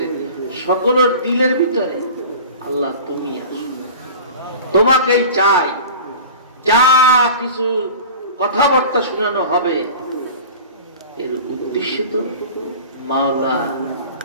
সকলের দিলের ভিতরে। আল্লাহ তুমি আসো, তোমাকেই চাই। যা কিছু কথাবার্তা শোনানো হবে এর উদ্দেশ্য তো মাওলা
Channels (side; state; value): both; inverted; correlation -0.38